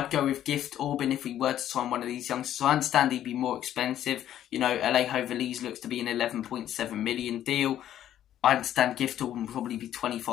go with Gift Orban if we were to sign one of these youngsters. So I understand he'd be more expensive. Alejo Véliz looks to be an 11.7 million deal. I understand Gift Orban will probably be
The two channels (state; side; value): quieter; right; 11.5 dB